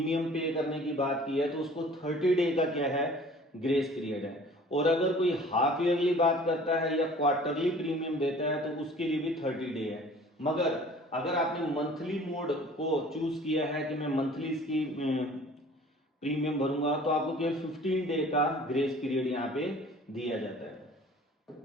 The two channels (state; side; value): normal; both; correlation 0.48